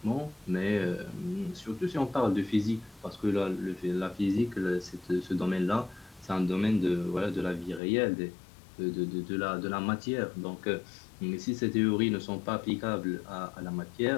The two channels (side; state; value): right; drops out; at 7.8 s